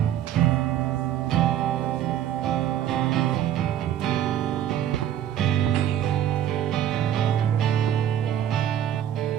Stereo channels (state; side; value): quieter; left; 10.8 dB